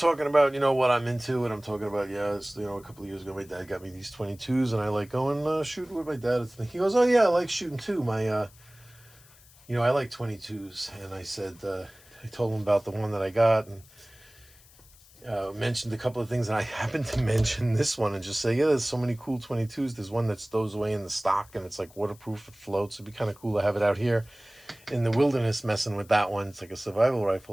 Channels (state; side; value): noise; left; hiss, 25 dB below the sound